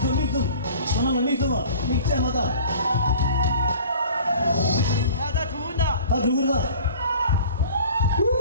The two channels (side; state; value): both; inverted; correlation -0.45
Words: 전화만 믹스마다 야나 죽는다 다 죽는다